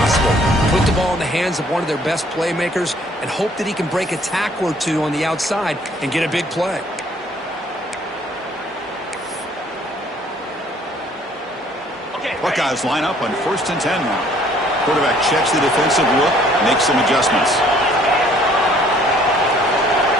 Put the ball in the hands of one of their best playmakers and hope that he can break a tackle or two on the outside and get a big play. Buckeyes line up on 1st and 10 now. Quarterback checks the defensive look, makes some adjustments.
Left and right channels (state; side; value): normal; both; correlation 0.59